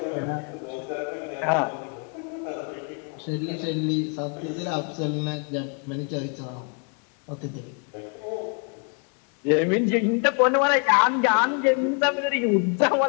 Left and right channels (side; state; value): right; quieter; 38.6 dB